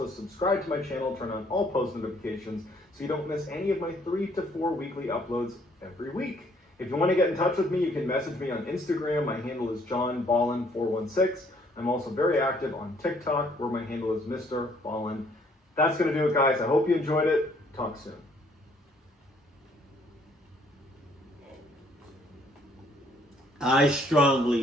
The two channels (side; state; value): both; normal; correlation 0.64